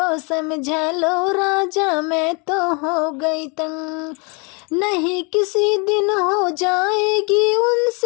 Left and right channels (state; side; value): quieter; right; 32.3 dB